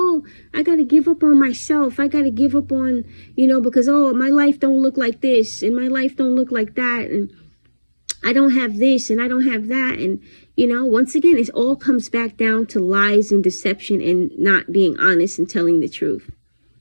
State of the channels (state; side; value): inverted; both; correlation -1.00